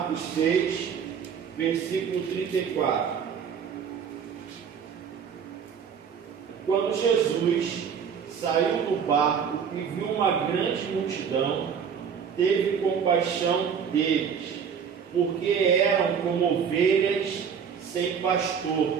6, versículo 34. Quando Jesus saiu do barco e viu uma grande multidão, teve compaixão deles, porque eram como ovelhas sem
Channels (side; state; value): left; quieter; 7.1 dB